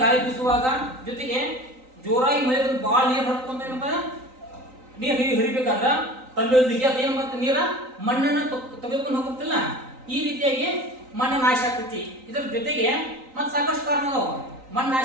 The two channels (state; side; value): late; left; 3.9 ms